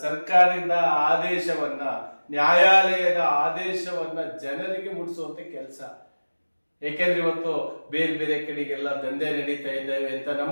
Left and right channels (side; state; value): both; inverted; correlation -1.00